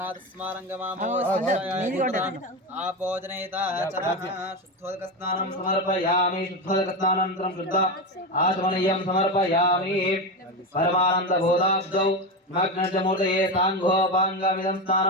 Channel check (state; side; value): normal; both; correlation 0.16